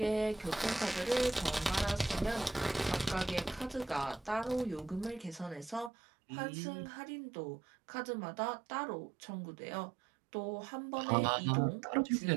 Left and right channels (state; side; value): drops out; left; at 5.9 s